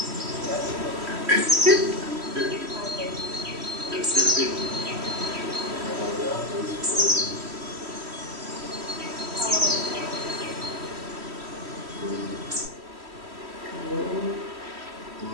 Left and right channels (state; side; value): late; left; 3.1 ms